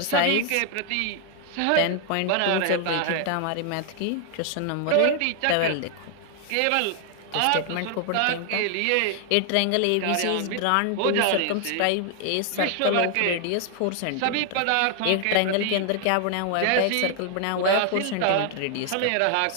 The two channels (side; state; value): both; different; correlation 0.00